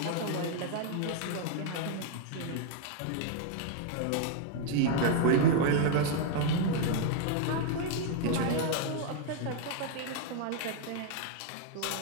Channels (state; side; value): different; both; correlation 0.00